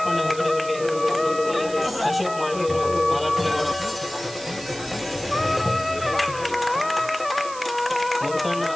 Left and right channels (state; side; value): noise; right; hiss, 14 dB below the sound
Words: ಹೆಗಡೆ ಅವರಿಗೆ ಅಶೋಕ್ ಮಾಳಿಗೆಯವರು ಮಾಲಾರ್ಪಣೆ ಮಾಡ ಮುತ್ತಣ್ಣ